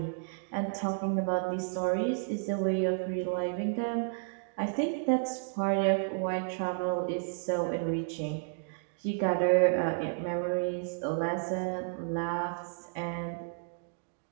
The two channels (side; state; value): left; silent; digital silence